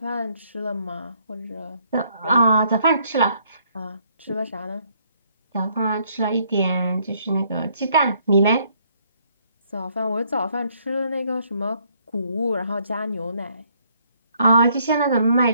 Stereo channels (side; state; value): both; inverted; correlation -0.68